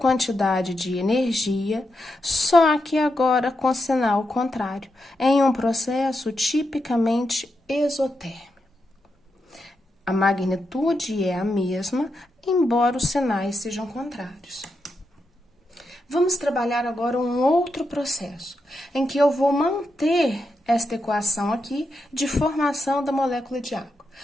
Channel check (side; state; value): both; normal; correlation 0.85